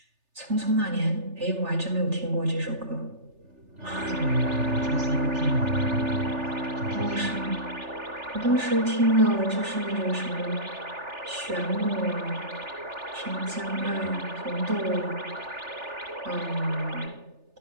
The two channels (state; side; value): late; left; 3.4 ms